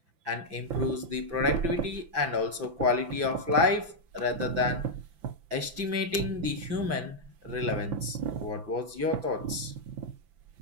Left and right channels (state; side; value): late; left; 5.9 ms